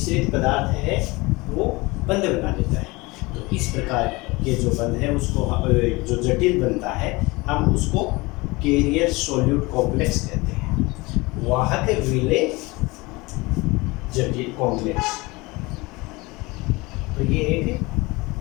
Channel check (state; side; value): quieter; right; 23.5 dB